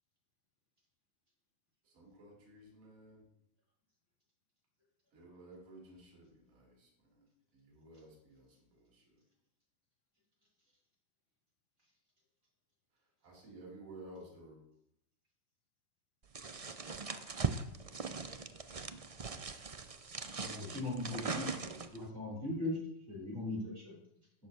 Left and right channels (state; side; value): late; left; 1.6 ms